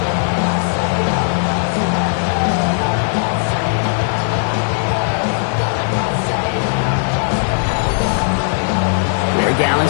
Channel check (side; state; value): right; silent; digital silence